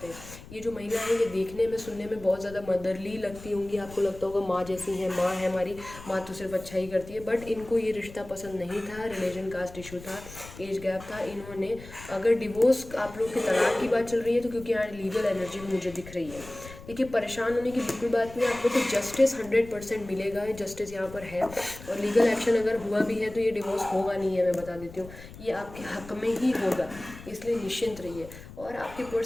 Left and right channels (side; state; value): left; noise; rumble, 16 dB below the sound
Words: हैं। ये जो महिला है ये देखने में, सुनने में बहुत ज़्यादा मदरली लगती होंगी, आपको लगता होगा माँ जैसी हैं, माँ है हमारी, माँ तो सिर्फ अच्छा ही करती है, बट इनको ये रिश्ता पसंद नहीं था। रिलीजन कास्ट इशू था, एज गैप था। इन्होंने, अगर डिवोर्स आप लोग के तलाक की बात चल रही है तो क्योंकि यहाँ लीगल एनर्जी भी मुझे दिख रही है, देखिए परेशान होने की बिल्कुल बात नहीं है। आप लोग को जस्टिस 100% मिलेगा, जस्टिस यहाँ पर है, और लीगल एक्शन अगर हुआ भी है तो ये डिवोर्स होगा नहीं है, मैं बता देती हूँ, ये आपके हक में ही होगा, इसलिए निश्चिंत रहिए। और आपके